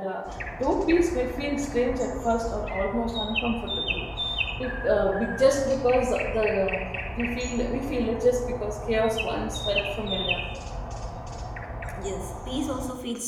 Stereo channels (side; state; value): both; identical; correlation 1.00